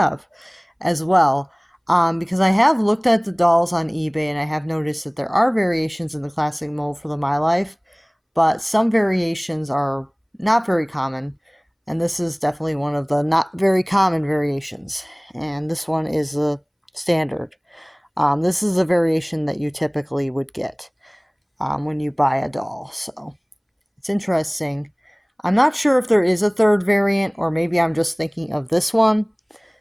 as well. Because I have looked at the dolls on eBay and I have noticed that there are variations in the classic mold for the My Life, but some variations are not very common. And this is definitely one of the not very common variations. And this one is a standard. This is a variation that you typically would get when you buy a doll. So it's interesting. I'm not sure if there is a third variant or maybe I'm just thinking of this one.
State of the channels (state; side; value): identical; both; correlation 1.00